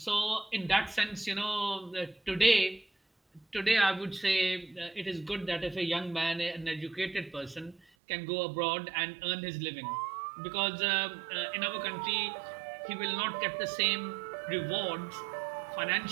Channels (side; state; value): left; drops out; at 7.8 s